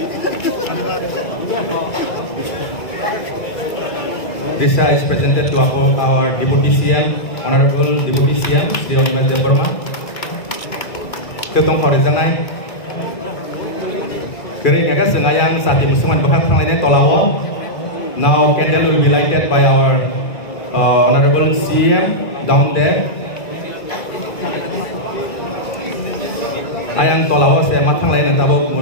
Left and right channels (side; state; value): right; late; 2.4 ms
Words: This is presented to our Deputy CM, Honorable Deputy CM, Sri Onmes Devarma. Ketua Horizontal. Kering kakak sengayang saat musuhan bahkan lainnya tolawo. Now candle will be lighted by our Honorable CM down there. Ayang tolawo saya matang lain tahu